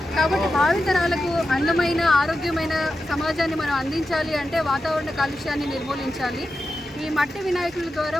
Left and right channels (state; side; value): normal; both; correlation 0.91